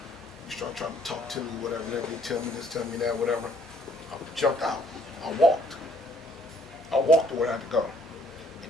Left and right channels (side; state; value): both; normal; correlation 0.63